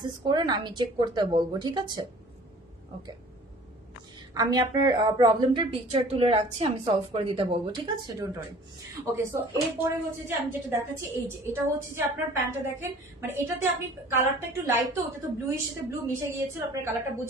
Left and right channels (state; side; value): normal; both; correlation 0.49